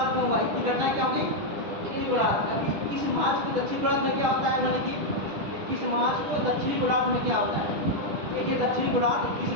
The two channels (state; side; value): late; left; 10 ms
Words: में हुआ। इसकी घटना क्या होगी, उत्तरी गोलार्ध में। 21 मार्च को दक्षिण गोलार्ध में क्या होता है, यानी कि 21 मार्च को दक्षिणी गोलार्ध में क्या होता है। देखिए दक्षिणी गोलार्ध 21